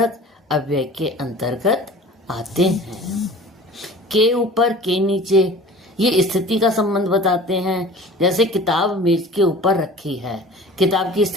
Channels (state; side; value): normal; both; correlation 0.42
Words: अव्यय के अंतर्गत आते हैं। के ऊपर, के नीचे, ये स्थिति का संबंध बताते हैं। जैसे किताब मेज के ऊपर रखी है। किताब की